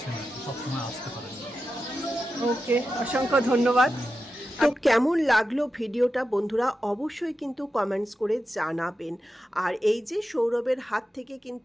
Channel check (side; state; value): both; normal; correlation 0.90